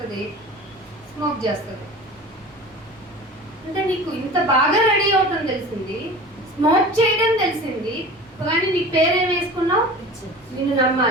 స్మోక్ చేస్తుంది. అంటే నీకు ఇంత బాగా రెడీ అవటం తెలిసింది, స్మోక్ చేయడం తెలిసింది, కానీ నీ పేరేం వేసుకున్నావు? నిన్ను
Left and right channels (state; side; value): normal; both; correlation 0.38